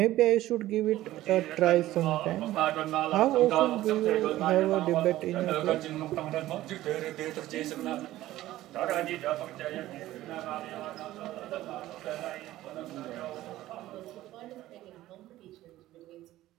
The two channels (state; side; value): quieter; left; 15.3 dB